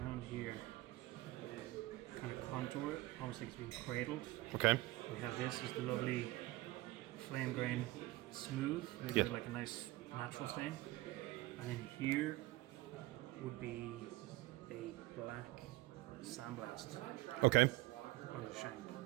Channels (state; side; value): quieter; left; 19.0 dB